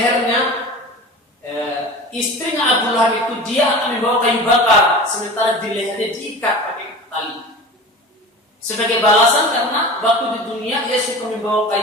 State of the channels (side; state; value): both; normal; correlation 0.35